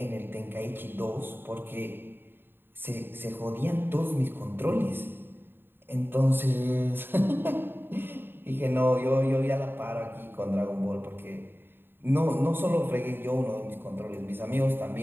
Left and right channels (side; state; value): left; late; 0.099 ms